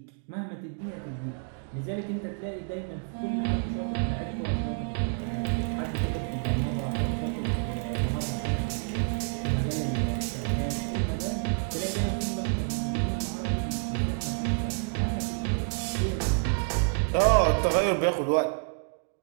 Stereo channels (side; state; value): left; silent; 59 dB below the other